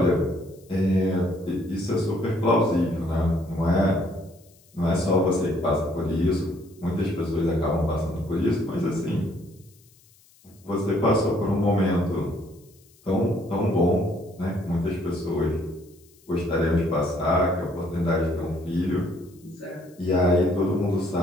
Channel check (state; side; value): noise; left; hiss, 29 dB below the sound